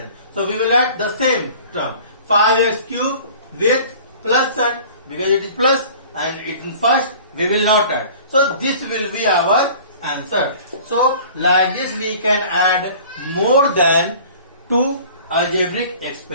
So we will write the same term 5x cube with plus sign because it is plus, and in first we will not add. So this will be our answer. So like this we can add more than two algebraic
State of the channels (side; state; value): both; inverted; correlation -0.46